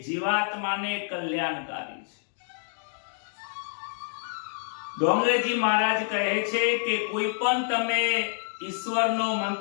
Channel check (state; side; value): silent; right; 57 dB below the other